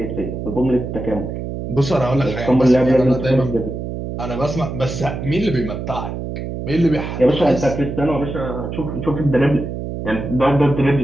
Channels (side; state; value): right; noise; hum, 6 dB below the sound